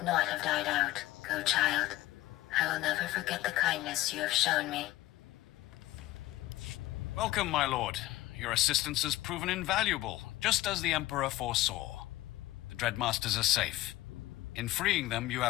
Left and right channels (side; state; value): right; quieter; 16.7 dB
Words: not have died out. Go, child. I will never forget the kindness you have shown me. Welcome, my lord. Your assistance has proven invaluable, just as the Emperor foresaw. The Dreadmasters are safe. In freeing them, you